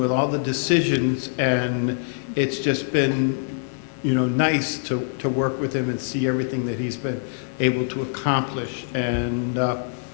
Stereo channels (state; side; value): silent; right; digital silence